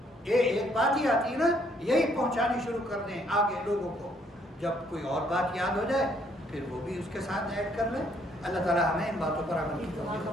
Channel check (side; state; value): both; normal; correlation 0.67